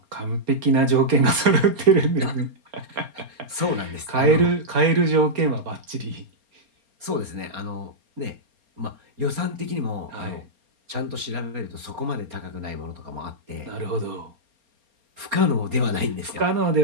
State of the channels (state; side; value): late; left; 4.3 ms